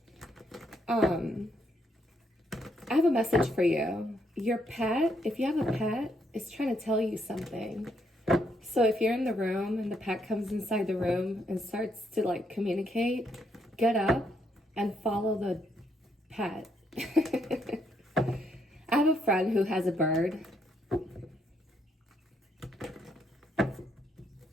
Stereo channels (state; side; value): normal; both; correlation 0.75